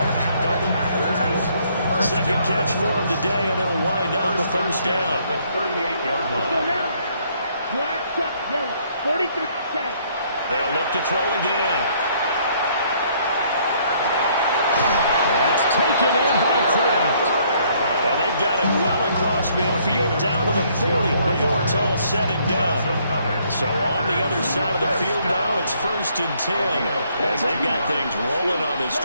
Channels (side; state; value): both; inverted; correlation -0.66